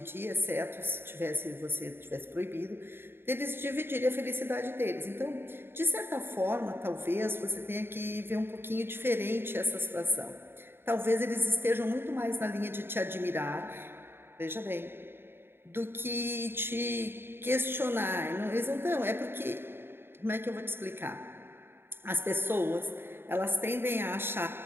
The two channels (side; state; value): left; late; 0.11 ms